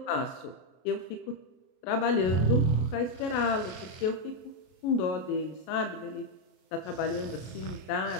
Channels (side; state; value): right; late; 33 ms